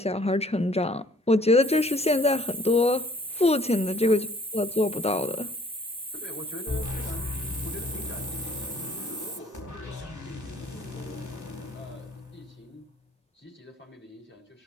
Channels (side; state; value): both; normal; correlation 0.57